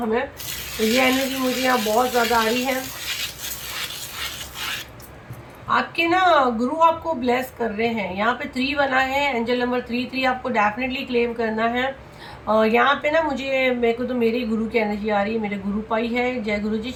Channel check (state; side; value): identical; both; correlation 1.00